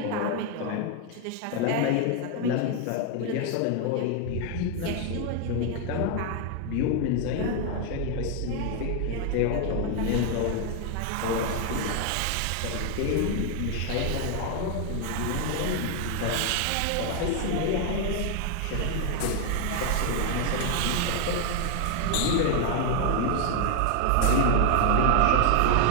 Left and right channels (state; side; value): different; both; correlation 0.01